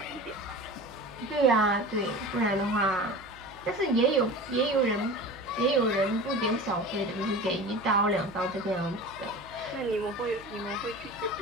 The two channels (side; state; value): right; noise; hum, 23 dB below the sound